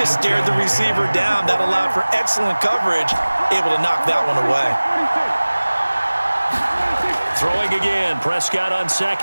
stared the receiver down. That allowed for excellent coverage, able to knock that one away. Throwing again, Prescott on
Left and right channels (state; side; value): inverted; both; correlation -1.00